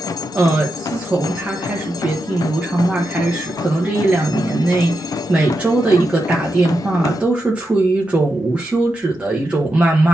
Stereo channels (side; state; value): both; normal; correlation 0.86